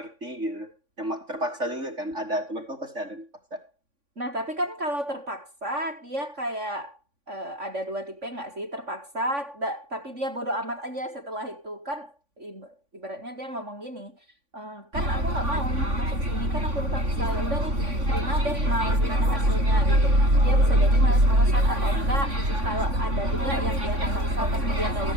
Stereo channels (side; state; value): left; late; 3.5 ms